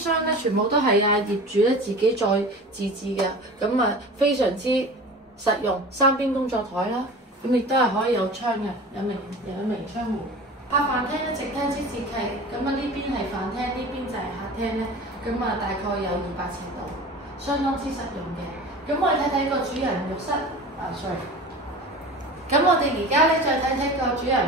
咧全部都係業主咧自己再自製嘅，咁啊非常之實用。3邊工作台啦，咁亦都係可以有窗嘅，有明窗戶。客飯廳咧直廳式設計，咁啊呢邊係飯廳，呢邊就係客廳咧，咁啊大概有200尺度，相當之實用嘅。咁我哋睇睇個主人浴室，sorry。咁我哋而家咧再睇睇個主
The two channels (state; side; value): normal; both; correlation 0.36